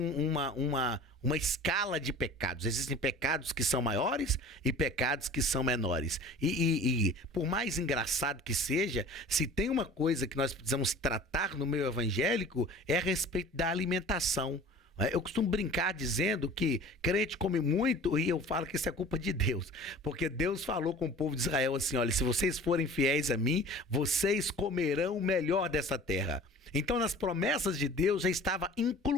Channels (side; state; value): both; normal; correlation 0.43